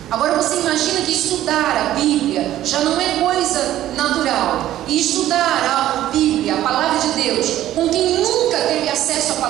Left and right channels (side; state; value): left; quieter; 13.2 dB